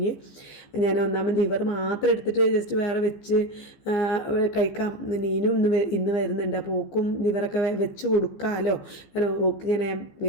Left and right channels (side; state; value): right; late; 15 ms